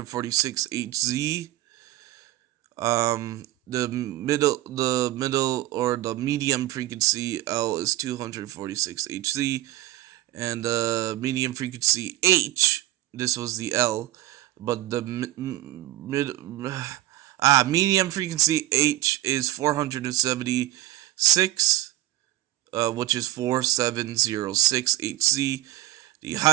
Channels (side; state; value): left; quieter; 15.6 dB